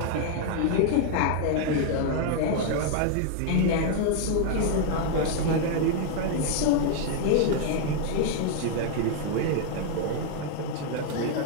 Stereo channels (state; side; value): different; both; correlation 0.00